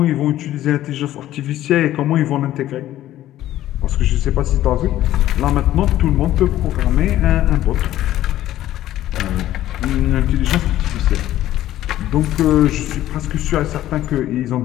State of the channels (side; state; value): right; quieter; 13.6 dB